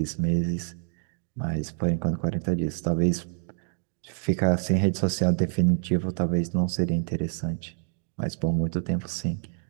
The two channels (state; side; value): silent; left; 60 dB below the other